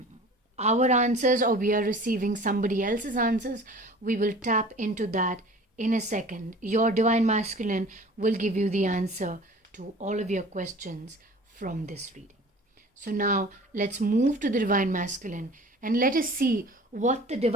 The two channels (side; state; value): both; normal; correlation 0.44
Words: answers or we are receiving somebody else's answers? We will tap into that in a second. Your Divine Masculine will give you the answer to all of your questions from this reading. So now let's move to the Divine Masculine and let us see what the